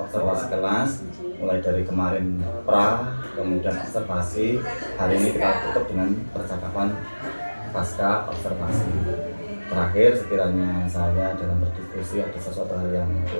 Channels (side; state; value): both; inverted; correlation -1.00